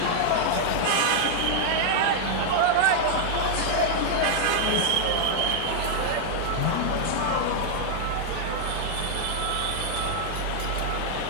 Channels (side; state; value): both; different; correlation 0.00